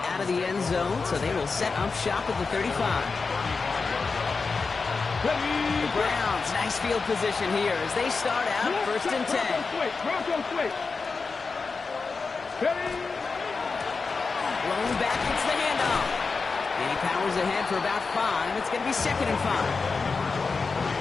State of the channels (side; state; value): right; quieter; 4.5 dB